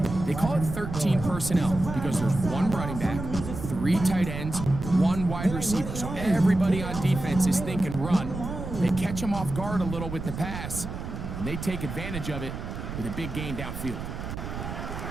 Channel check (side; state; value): right; noise; rumble, 7 dB below the sound